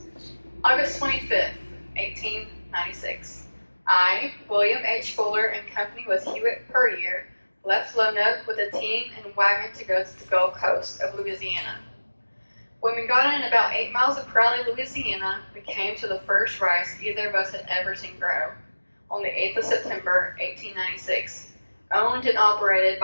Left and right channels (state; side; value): inverted; both; correlation -1.00